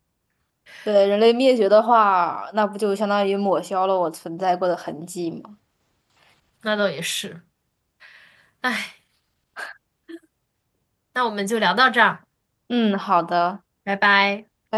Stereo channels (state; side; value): identical; both; correlation 1.00